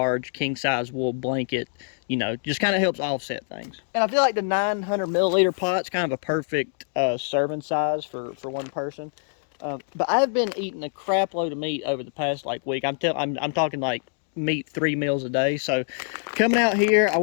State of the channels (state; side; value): silent; right; digital silence